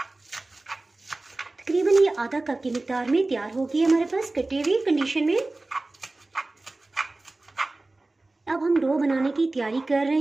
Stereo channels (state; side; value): quieter; left; 3.0 dB